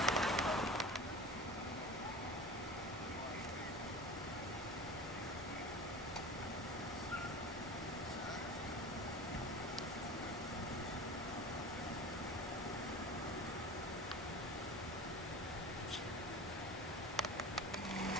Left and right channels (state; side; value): normal; both; correlation 0.34